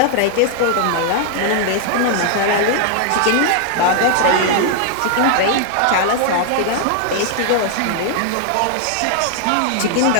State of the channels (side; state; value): both; different; correlation 0.00